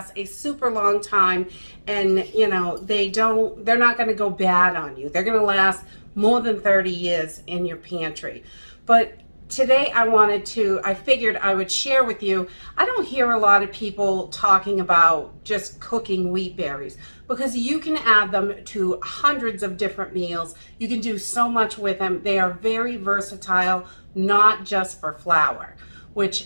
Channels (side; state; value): both; inverted; correlation -1.00